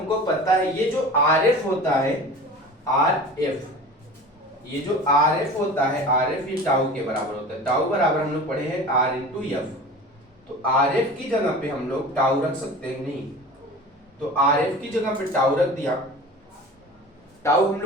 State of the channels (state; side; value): normal; both; correlation 0.37